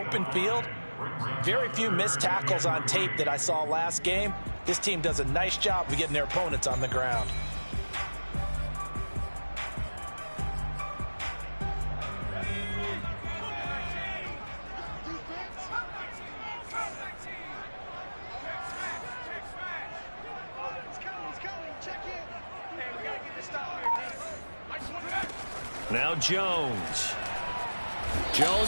field. Very few missed tackles on tape that I saw last game. This team does a nice job of getting their opponents on the ground. Now Jones.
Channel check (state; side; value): inverted; both; correlation -1.00